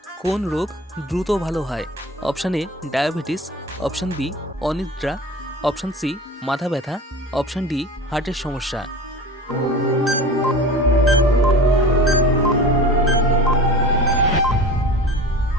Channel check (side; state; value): both; normal; correlation 0.36